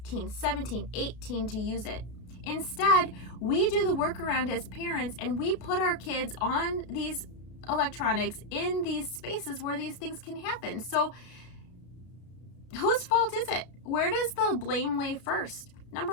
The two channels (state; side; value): late; right; 33 ms